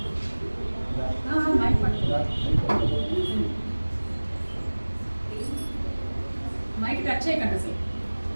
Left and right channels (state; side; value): inverted; both; correlation -1.00